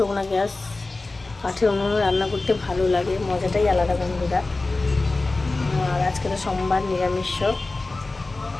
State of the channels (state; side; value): quieter; right; 3.3 dB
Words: না, গ্যাস কাঠের উনুনে রান্না করতে ভালো লাগে, মজাটাই আলাদা বন্ধুরা। আর আজকে তো সোমবার, নিরামিষ,